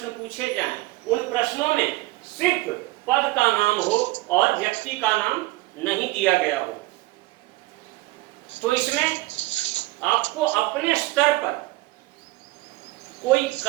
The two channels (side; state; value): left; quieter; 20.0 dB